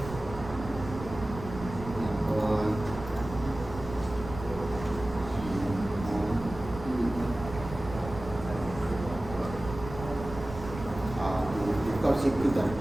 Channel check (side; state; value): right; noise; rumble, 11 dB below the sound